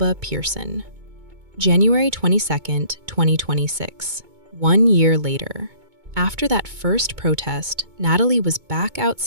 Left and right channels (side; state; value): left; late; 2.2 ms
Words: Pearson. January 22nd, 2026, 1 year later. After that first protest, Natalie was back